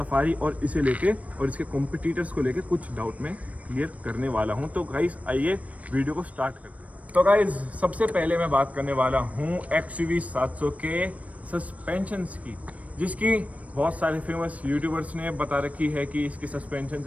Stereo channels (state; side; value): late; left; 0.068 ms